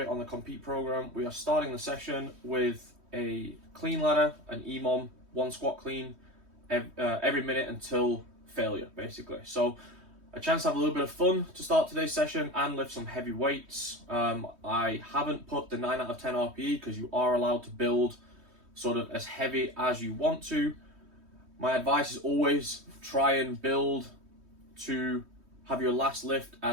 on the Compete program, we are starting the session with a clean ladder, an EMOM, one squat clean every minute until failure, basically. So a chance to have a little bit of fun to start today's session and lift some heavy weights. I haven't put the 9 out of 10 RPE because you are allowed to build sort of as heavy as you want to. My advice is always try and build to have your last lift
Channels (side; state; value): left; late; 3.2 ms